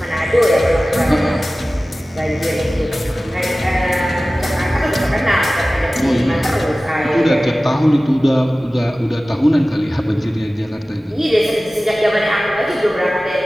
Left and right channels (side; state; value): both; normal; correlation 0.97